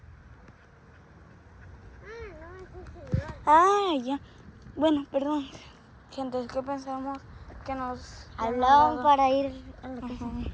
Ah, ya. Bueno, perdón. Gente, es que pensamos que nos Hablaban para ir a la casa.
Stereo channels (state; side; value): identical; both; correlation 1.00